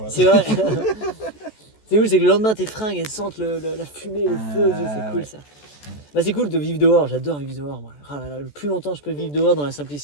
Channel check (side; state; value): right; late; 14 ms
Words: c'est vrai. C'est cool, c'est que le lendemain, tes fringues, elles sentent la fumée, le feu. C'est cool, ça. Bah, c'est cool de vivre dehors. J'adore vivre dehors, moi. Ah là là, le plus longtemps je peux vivre dehors dans la